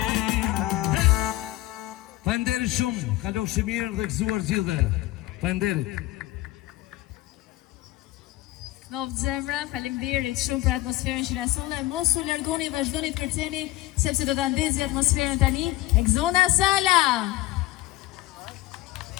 Falenderit shumë, kalofshi mirë dhe gëzuar gjithë. Falenderit. Novë zemra, faleminderit shumë për atmosferën që na solle. Mos u largoni, vazhdoni të kërceni, sepse do ta ndezi atmosferën tani Exona Sala.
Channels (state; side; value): quieter; right; 17.5 dB